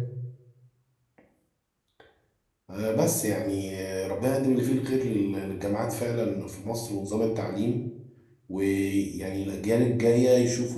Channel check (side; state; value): both; identical; correlation 1.00